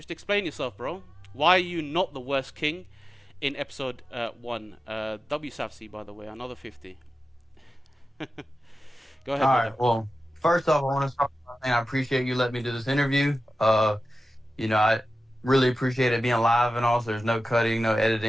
explain yourself, bro. Why are you not the worst king in episode 1? WSAFC, by the way, another 50. Go ahead. All right. Well, first off, I want to start by saying I appreciate you letting me do this interview. You know, I really appreciate it being live and all. So there's no cutting, no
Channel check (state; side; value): normal; both; correlation 0.94